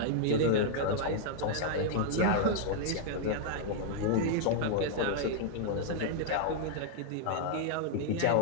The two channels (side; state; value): both; different; correlation -0.01